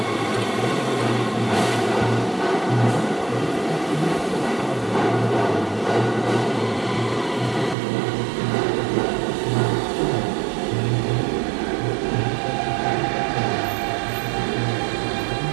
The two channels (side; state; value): left; drops out; at 7.8 s